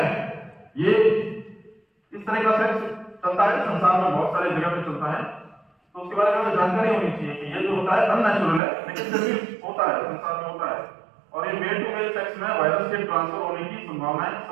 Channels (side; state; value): left; drops out; at 8.6 s